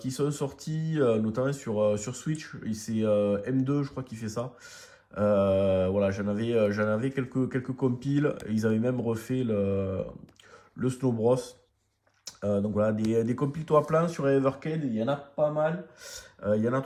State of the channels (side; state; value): both; identical; correlation 1.00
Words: sont sorties, notamment sur Switch, et c'est M2 je crois qui fait ça. Voilà, j'en avais quelques compiles, ils avaient même refait le Snow Bros. Donc voilà, des compiles toit plein sur Evercade, il y en a pas mal. Il y en a